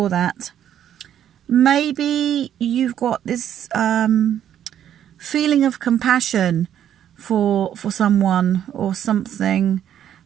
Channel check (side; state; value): left; quieter; 10.2 dB